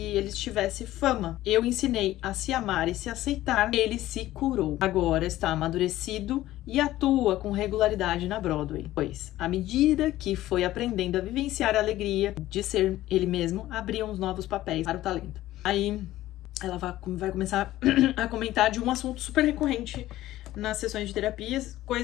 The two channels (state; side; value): quieter; right; 15.2 dB